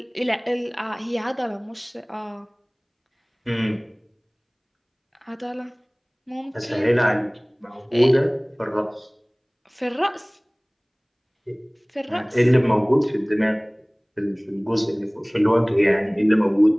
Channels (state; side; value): identical; both; correlation 1.00